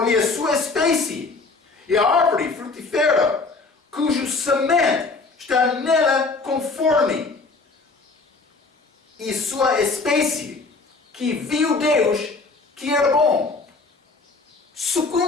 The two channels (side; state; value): right; quieter; 3.9 dB